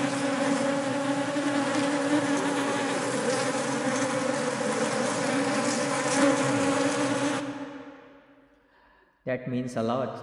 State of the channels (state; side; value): identical; both; correlation 1.00